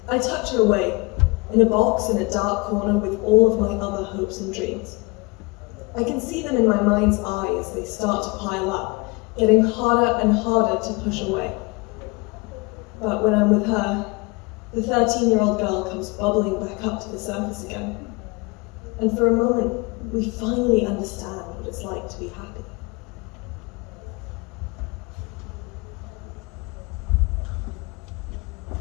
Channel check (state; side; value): quieter; right; 26.4 dB